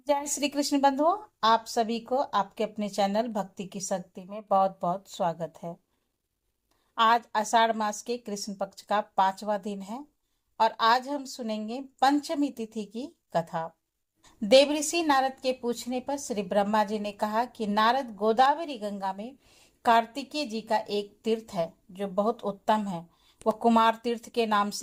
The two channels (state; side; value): identical; both; correlation 1.00